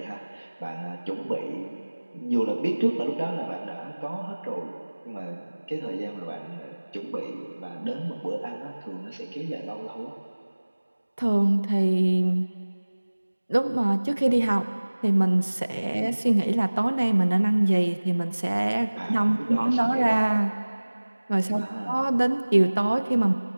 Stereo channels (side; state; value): both; inverted; correlation -1.00